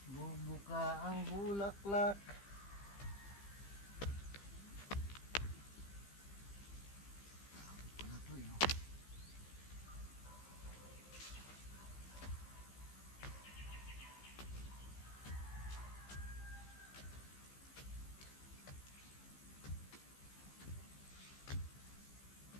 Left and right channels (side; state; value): right; late; 15 ms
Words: Bubuka ang bulaklak.